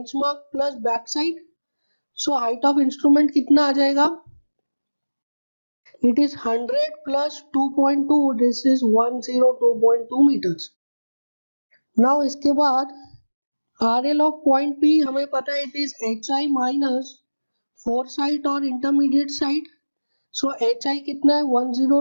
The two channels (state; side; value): inverted; both; correlation -1.00